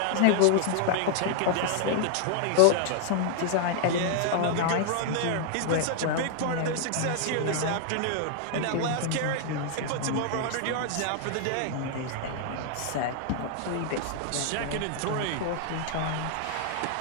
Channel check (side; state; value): both; different; correlation 0.00